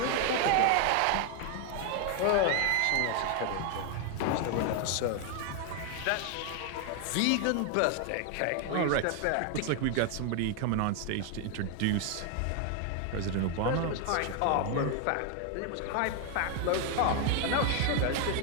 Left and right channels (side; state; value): both; different; correlation 0.01